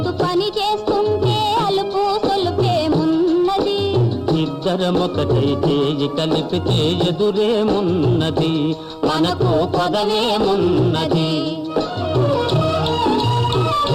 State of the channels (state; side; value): identical; both; correlation 1.00